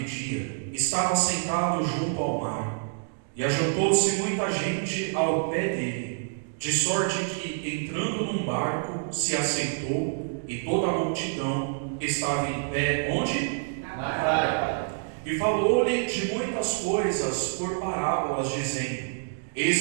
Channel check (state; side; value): silent; left; digital silence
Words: dia, estava sentado junto ao mar, e ajuntou-se muita gente ao pé dele, de sorte que, entrando num barco, se assentou, e toda a multidão estava em pé, onde? Na praia. E falou-lhe de muitas coisas por parábolas, dizendo: